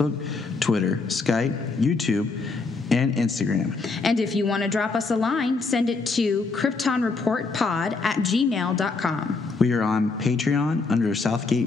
Twitter, Skype, YouTube, and Instagram. And if you want to drop us a line, send it to kryptonreportpod@gmail.com. We are on Patreon under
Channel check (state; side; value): quieter; right; 4.0 dB